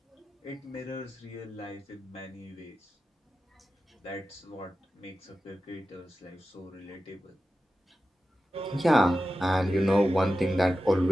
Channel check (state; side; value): normal; both; correlation 0.93